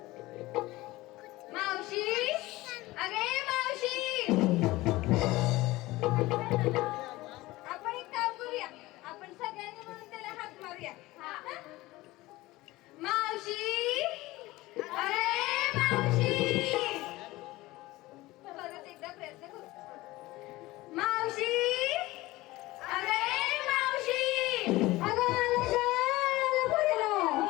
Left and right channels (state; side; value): quieter; right; 19.1 dB